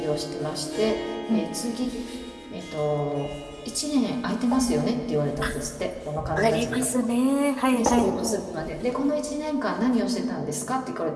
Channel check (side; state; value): both; identical; correlation 1.00